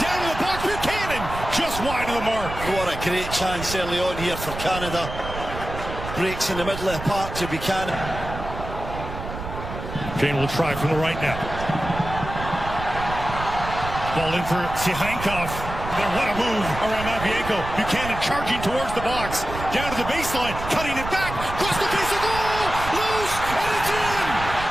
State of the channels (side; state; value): right; noise; rumble, 8 dB below the sound